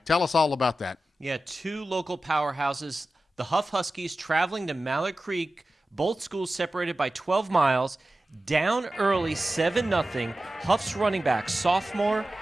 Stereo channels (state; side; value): normal; both; correlation 0.94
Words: Tell us all about that. Yeah, two local powerhouses, the Hough Huskies traveling to Mallard Creek, both schools separated by 12 miles, down early 7-0. Hough's running back, sophomore